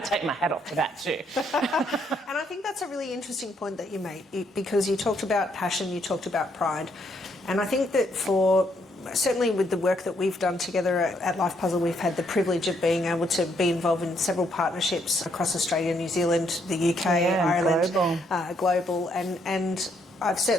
take my hat off to that too. And I think that's a really interesting point that you made, because you talked about passion, you talked about pride, and I think that certainly with the work that we've done together at Life Puzzle, we've had the privilege of being able to be involved in several partnerships across Australia, New Zealand, the UK, Ireland, global, and I've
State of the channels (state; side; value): normal; both; correlation 0.73